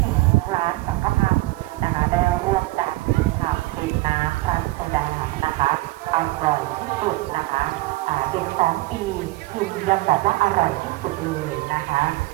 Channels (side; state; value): left; quieter; 19.8 dB